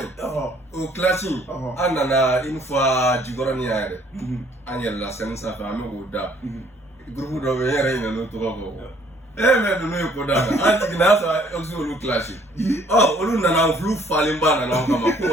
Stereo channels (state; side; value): normal; both; correlation 0.61